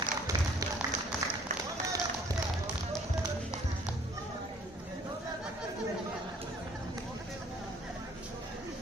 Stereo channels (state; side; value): normal; both; correlation 0.57